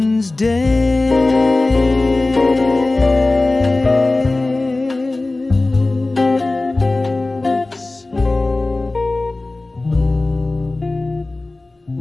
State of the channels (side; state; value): right; quieter; 3.0 dB